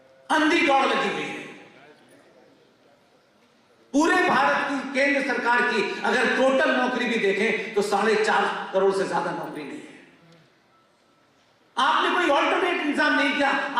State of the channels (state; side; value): identical; both; correlation 1.00